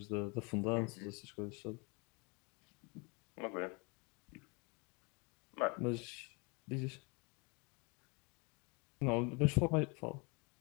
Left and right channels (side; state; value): right; quieter; 31.0 dB